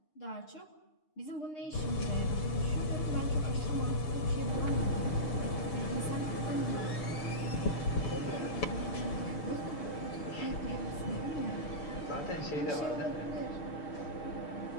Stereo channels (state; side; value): late; right; 7.0 ms